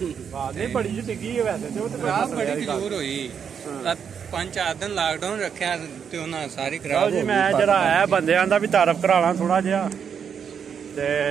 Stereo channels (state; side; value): quieter; left; 7.3 dB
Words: ਬਾਤ ਨਹੀਂ ਬੜੀ ਜਿਹੀ ਡਿੱਗੀ ਹੈ ਵੈਸੇ ਤੇ, ਉਹ ਤੇ ਖਰਾਬ ਬੜੀ ਖਜੂਰ ਹੋਈ। 5-4 ਦਿਨ ਲਾਕਡਾਊਨ ਰੱਖਿਆ ਤੇ ਉਹਨਾਂ ਸਾਰੀ ਖਰਾਬ ਹੋ ਗਈ। ਮੈਂ ਜਰਾ ਆਇਆ ਬੰਦਿਆਂ ਦਾ ਵੀ ਤਾਰਫ ਕਰਾ ਲਾਂ ਥੋੜਾ ਜਿਹਾ। ਤੇ